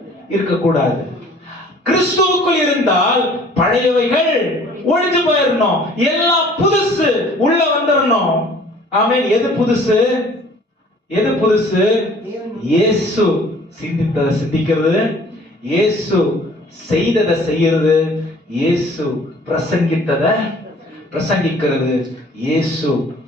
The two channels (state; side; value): normal; both; correlation 0.53